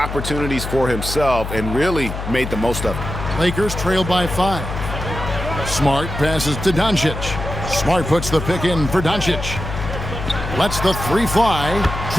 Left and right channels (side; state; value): left; noise; hum, 6 dB below the sound